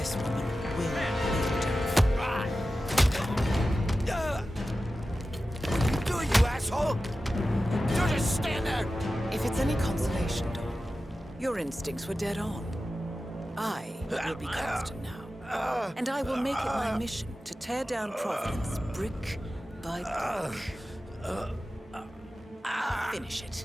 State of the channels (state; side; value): normal; both; correlation 0.94